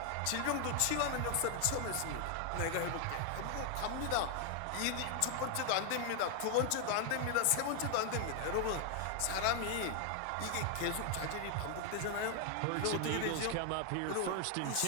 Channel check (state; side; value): different; both; correlation 0.00